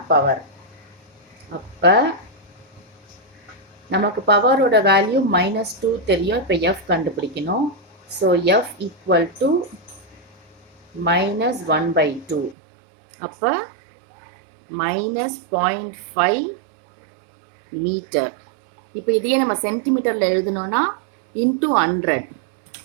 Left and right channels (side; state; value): left; drops out; at 12.6 s